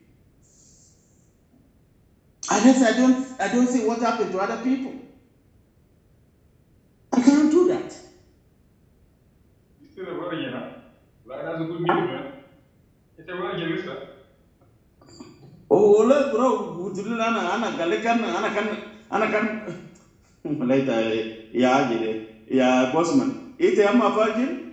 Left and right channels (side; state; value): both; identical; correlation 1.00